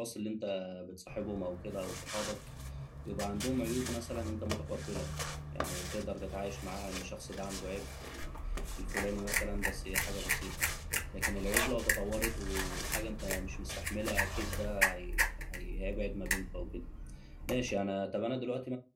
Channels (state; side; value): identical; both; correlation 1.00